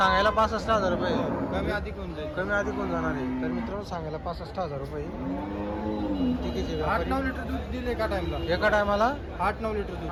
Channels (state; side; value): identical; both; correlation 1.00